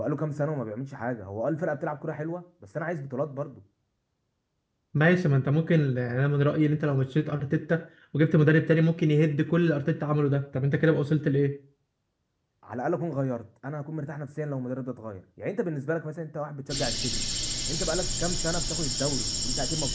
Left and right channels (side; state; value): both; identical; correlation 1.00